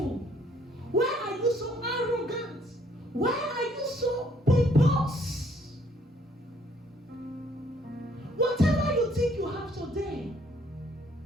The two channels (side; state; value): both; normal; correlation 0.64